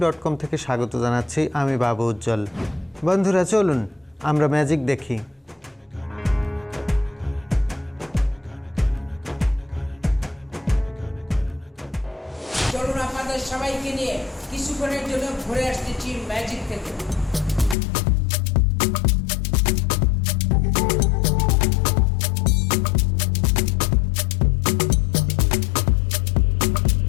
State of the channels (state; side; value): drops out; right; at 17.8 s